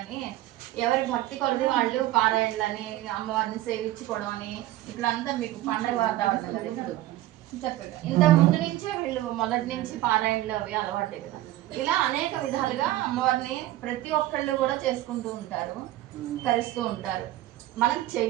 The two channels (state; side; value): quieter; left; 15.3 dB